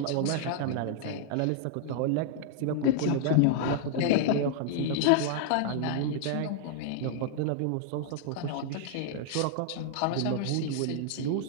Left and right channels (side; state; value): both; different; correlation -0.01